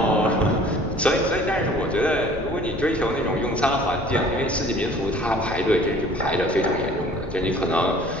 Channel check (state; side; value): noise; left; rumble, 13 dB below the sound